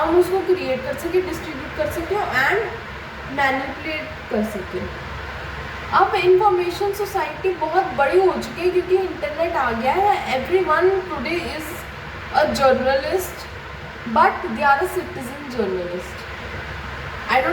उसको क्रिएट कर सके, डिस्ट्रीब्यूट कर सके एंड मैनिपुलेट कर सके। अब इंफॉर्मेशन सोसाइटी बहुत बड़ी हो चुकी है क्योंकि इंटरनेट आ गया है। Everyone today is a journalist but they are a citizen journalist. I don't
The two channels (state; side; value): identical; both; correlation 1.00